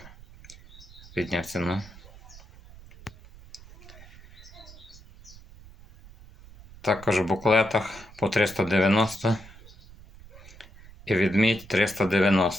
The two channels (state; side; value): noise; right; rumble, 20 dB below the sound